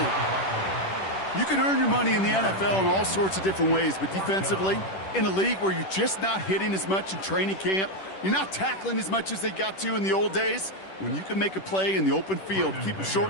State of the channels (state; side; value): late; right; 10 ms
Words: You can earn your money in the NFL in all sorts of different ways, but defensively, in a league where you're just not hitting as much in training camp, you're not tackling as much as they got to in the old days, when you can make a play in the open field, keep it